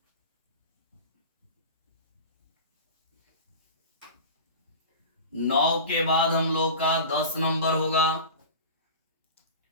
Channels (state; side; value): inverted; both; correlation -0.31